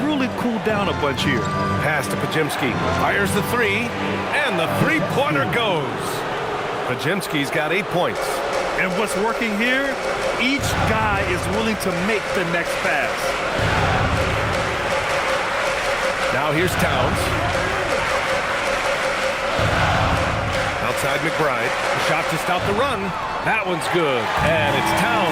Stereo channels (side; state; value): both; identical; correlation 1.00